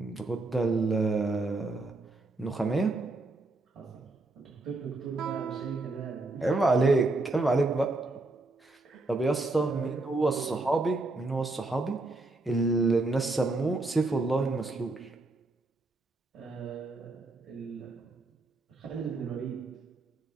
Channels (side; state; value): left; quieter; 3.1 dB